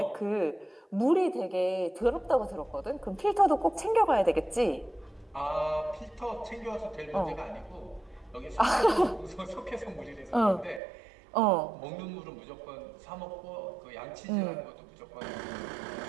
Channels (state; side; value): drops out; left; at 10.8 s